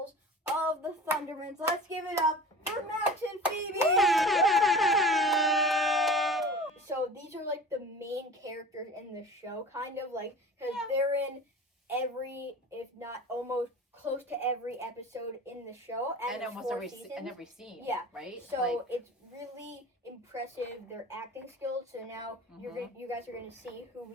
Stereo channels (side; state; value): both; normal; correlation 0.39